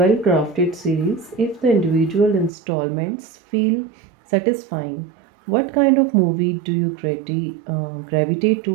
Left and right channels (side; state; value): left; drops out; at 2.5 s